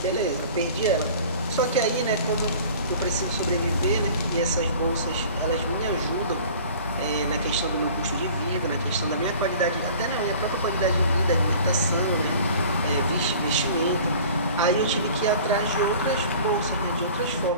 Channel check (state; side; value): inverted; both; correlation -0.45